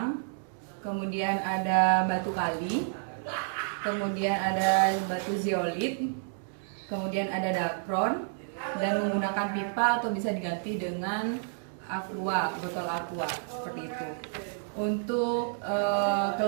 kemudian ada batu kali, kemudian ada batu zeolit, kemudian ada dacron, dan menggunakan pipa atau bisa diganti dengan aqua, botol aqua seperti itu. Untuk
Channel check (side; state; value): left; silent; digital silence